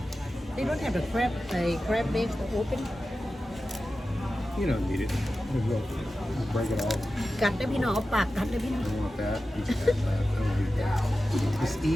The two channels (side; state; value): both; normal; correlation 0.93